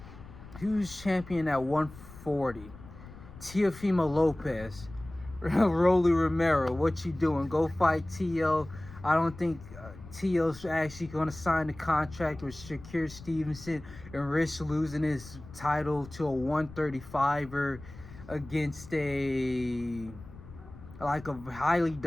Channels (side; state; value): left; noise; rumble, 17 dB below the sound